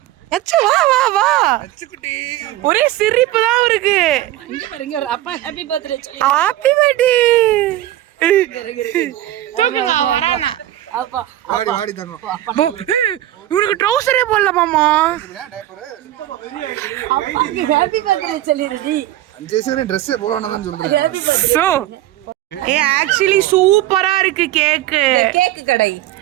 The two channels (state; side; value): quieter; left; 14.4 dB